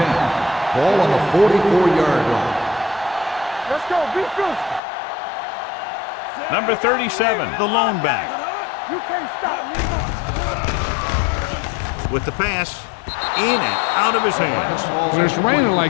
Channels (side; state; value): right; drops out; at 4.8 s